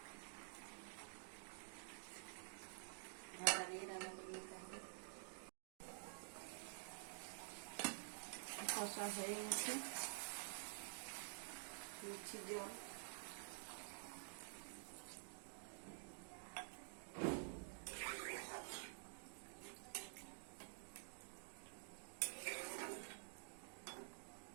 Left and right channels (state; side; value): silent; left; digital silence